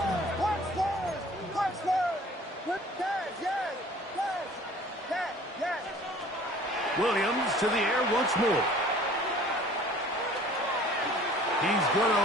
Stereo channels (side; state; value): both; normal; correlation 0.50